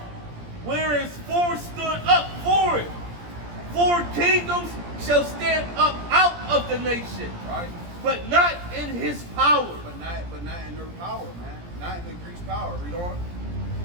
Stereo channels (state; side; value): late; left; 17 ms